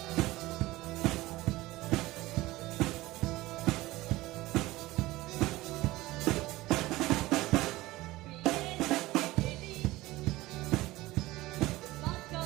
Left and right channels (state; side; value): quieter; left; 18.6 dB